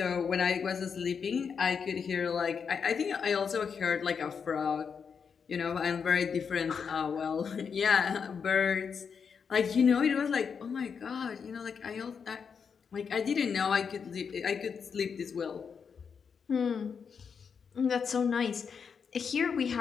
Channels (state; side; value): quieter; right; 6.3 dB